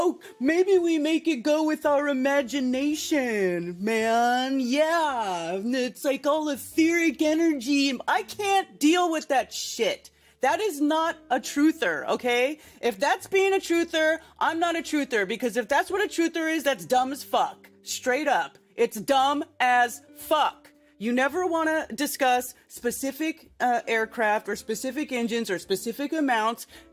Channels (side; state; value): both; identical; correlation 1.00